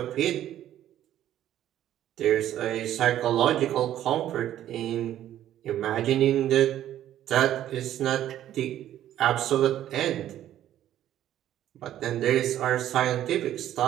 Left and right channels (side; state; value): left; quieter; 12.0 dB